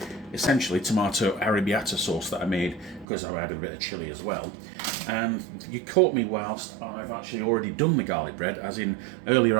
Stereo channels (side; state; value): left; drops out; at 3.1 s